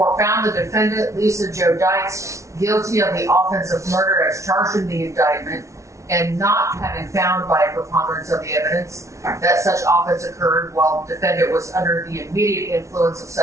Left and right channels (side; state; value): left; late; 0.14 ms